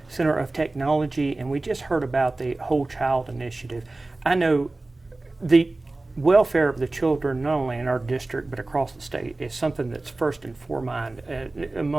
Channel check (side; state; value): left; quieter; 3.0 dB